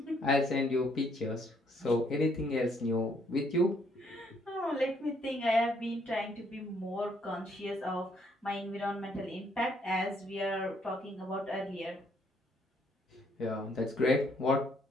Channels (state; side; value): normal; both; correlation 0.69